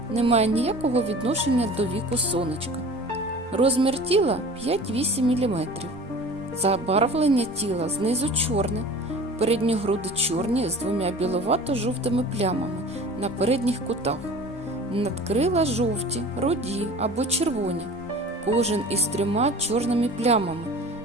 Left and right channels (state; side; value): normal; both; correlation 0.41